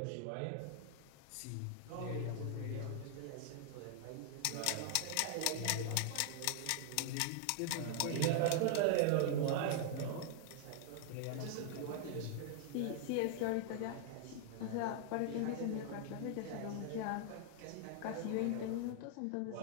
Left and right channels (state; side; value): different; both; correlation 0.00